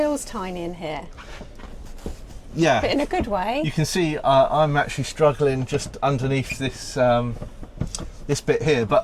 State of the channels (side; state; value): both; identical; correlation 1.00